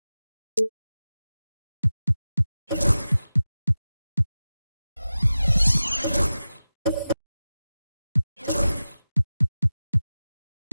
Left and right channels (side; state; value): both; inverted; correlation -0.95